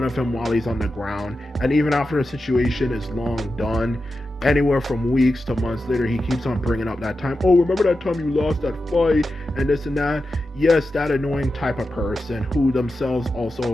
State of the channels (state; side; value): normal; both; correlation 0.91